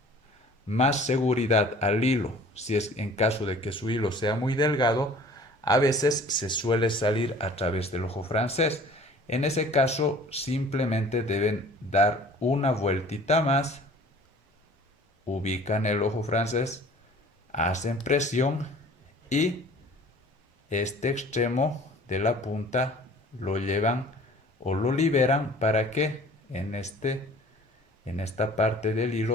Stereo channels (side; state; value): both; normal; correlation 0.48